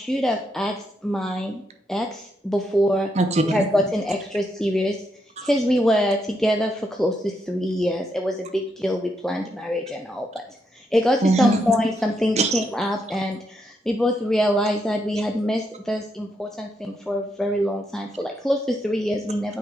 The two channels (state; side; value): normal; both; correlation 0.79